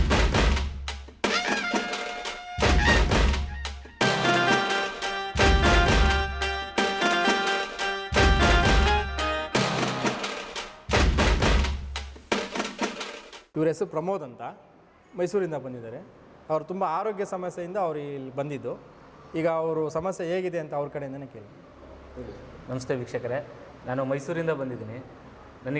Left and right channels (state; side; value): identical; both; correlation 1.00